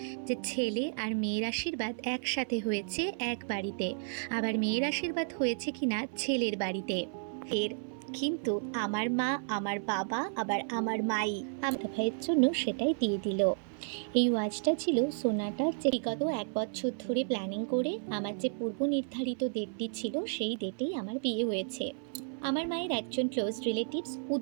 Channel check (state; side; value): silent; left; 56 dB below the other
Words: যে ছেলে আর মেয়ের আশীর্বাদ একসাথে হয়েছে এক বাড়িতে, আবার মেয়ের আশীর্বাদ হয়েছে কিনা ছেলের বাড়িতে। এর কিন্তু আমার মা, আমার বাবা, আবার আমার মাই আমার ভাইয়ের জন্য সেটাই দিয়ে দিল। এই ওয়াচটা ছিল সোনাটার, যে বিগত 1 বছর ধরে প্ল্যানিং করে আমার যে পূর্ব নির্ধারিত ডেটটি ছিল সেই ডেটেই আমার বিয়ে হয়েছে। আমার মায়ের একজন ক্লোজ রিলেটিভস